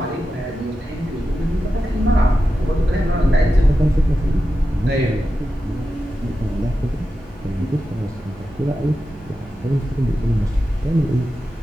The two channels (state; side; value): normal; both; correlation 0.91